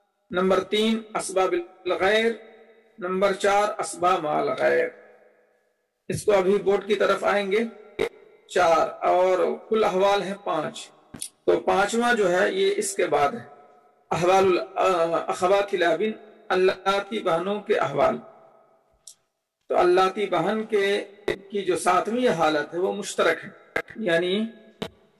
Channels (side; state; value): both; identical; correlation 1.00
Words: نمبر 3 اسباب بالغیر، نمبر 4 اسباب مال غیر. اس کو ابھی بورڈ کی طرف آئیں گے. 4 اور کل احوال ہیں 5. تو 5واں جو ہے یہ اس کے بعد ہے. احوال الاخوات الابن، اللاتی بہنوں کے احوال. تو اللاتی بہن کی جو 7ویں حالت ہے وہ مشترک ہے، یعنی